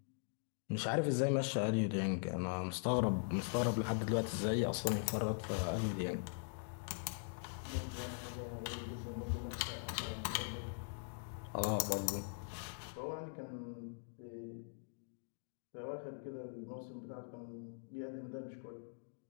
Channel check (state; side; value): silent; right; digital silence